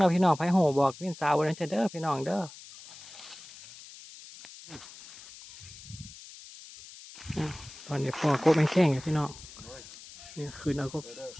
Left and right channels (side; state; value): left; noise; hiss, 17 dB below the sound